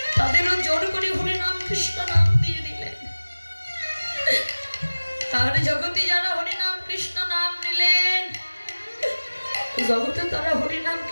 তাদেরও জোর করে হরি নাম কৃষ্ণ নাম দিয়ে দিলেন। আর জগতে যারা হরি নাম কৃষ্ণ নাম নিলেন, জগতে তারা হরি নাম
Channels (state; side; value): inverted; both; correlation -1.00